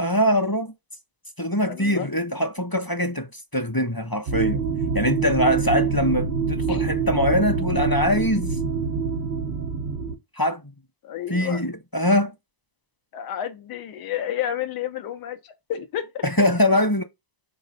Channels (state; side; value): late; right; 1.0 ms